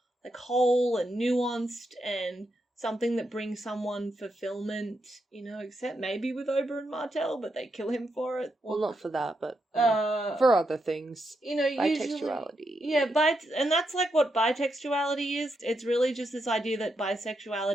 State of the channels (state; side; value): normal; both; correlation 0.82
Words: like whole and nuanced and something that brings someone fulfillment, you know, except maybe with Oberyn Martell, but they kill him for it. Well, not for that, but for other things. You know, bitextuality. Yeah, and that's like what bitextuality is. It's really just this idea that